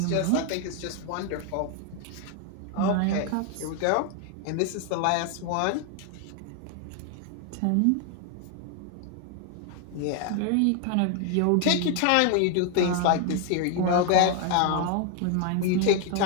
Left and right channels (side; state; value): both; different; correlation 0.00